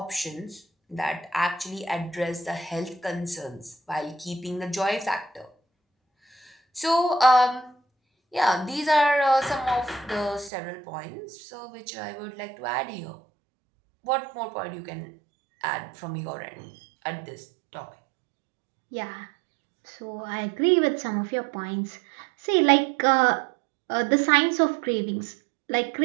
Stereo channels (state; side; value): drops out; left; at 10.5 s